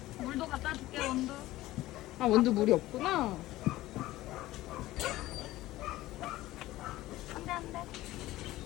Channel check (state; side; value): quieter; right; 16.7 dB